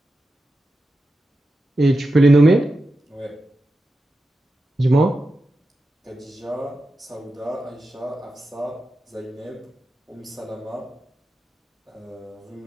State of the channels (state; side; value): normal; both; correlation 0.90